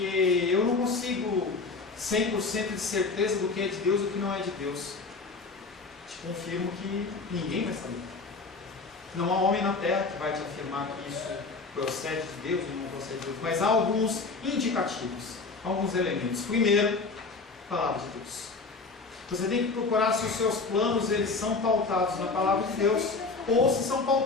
eu não consigo 100% de certeza do que é de Deus e do que não é de Deus. Te confirmo que ninguém vai saber. Não há homem na terra que vai te afirmar que isso procede de Deus ou não procede de Deus. Mas há alguns indicativos, alguns elementos. Primeiro, palavra de Deus. Você tem que procurar se os seus planos eles são pautados na palavra de Deus ou se são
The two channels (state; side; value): quieter; right; 4.1 dB